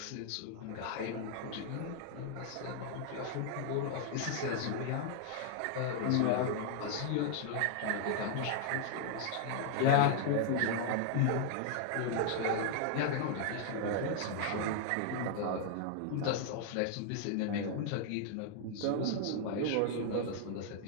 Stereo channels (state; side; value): different; both; correlation 0.00